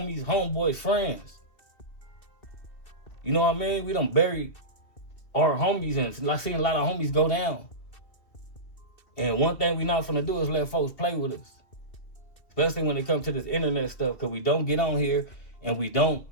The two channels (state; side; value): late; right; 2.5 ms